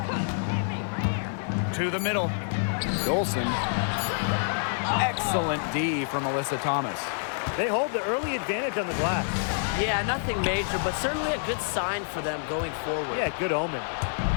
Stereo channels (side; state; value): right; silent; 60 dB below the other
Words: To the middle. Dolson. Excellent D from Alyssa Thomas. They hold the early advantage on the glass. Yeah, nothing major, but certainly a good sign for them going forward. Yeah, good omen.